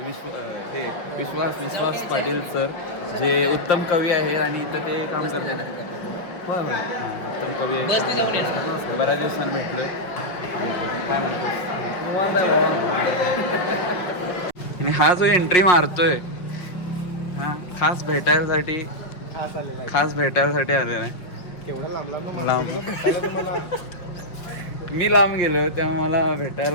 विश्वास पाटील सर, जे उत्तम कवी आहे आणि इथं ते काम करतात. होय उत्तम कवी आहे. बऱ्याच दिवसांनी भेटलोय. काय म्हणतो आणि हा जो एंट्री मारतोय हा खास भेटायसाठी आलेला आहे. लांब मी लांब गेलो तेव्हा मला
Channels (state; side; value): late; right; 5.6 ms